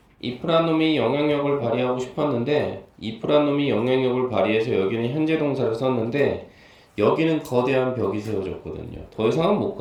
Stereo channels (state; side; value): identical; both; correlation 1.00